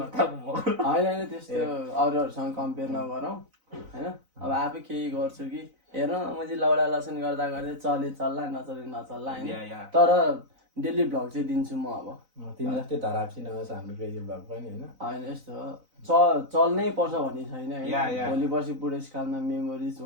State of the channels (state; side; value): late; left; 4.0 ms